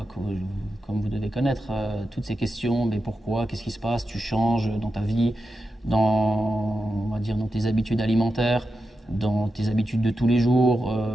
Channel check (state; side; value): normal; both; correlation 0.89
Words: comme vous devez connaître, toutes ces questions, mais pourquoi, qu'est-ce qui se passe, tu changes dans ta vie, on va dire, dans tes habitudes alimentaires, dans tes habitudes de tous les jours.